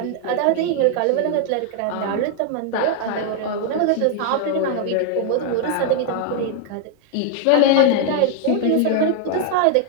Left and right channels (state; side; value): different; both; correlation 0.00